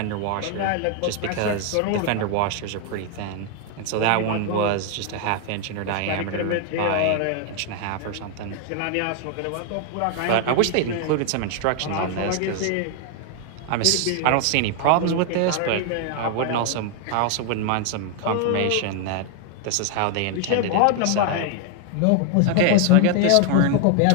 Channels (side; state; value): both; different; correlation 0.00